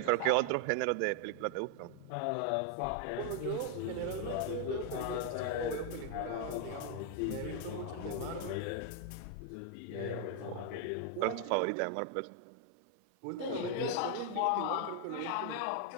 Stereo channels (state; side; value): different; both; correlation 0.01